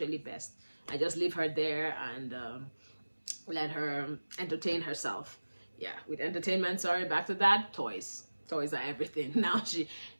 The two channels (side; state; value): both; inverted; correlation -1.00